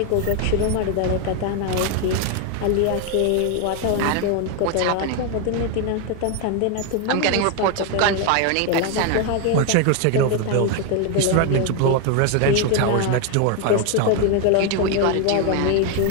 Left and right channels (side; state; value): both; different; correlation 0.01